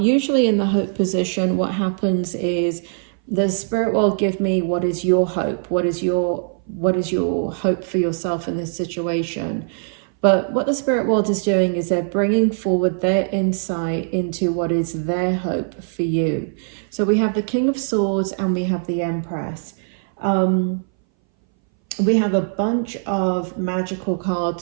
in the hope position, what happens is the spirit world give me, what is your hope? What is your hope for yourself in this situation? But what the spirit world is doing is they're bringing forward their insight into what is their hope for you. So we have the King of Swords and we have the Empress. We have a bunch of magic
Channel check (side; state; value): left; silent; 61 dB below the other